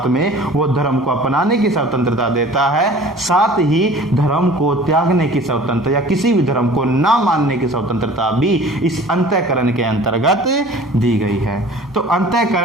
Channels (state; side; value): normal; both; correlation 0.46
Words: में वो धर्म को अपनाने की स्वतंत्रता देता है, साथ ही धर्म को त्यागने की स्वतंत्रता या किसी भी धर्म को ना मानने की स्वतंत्रता भी इस अंतःकरण के अंतर्गत दी गई है। तो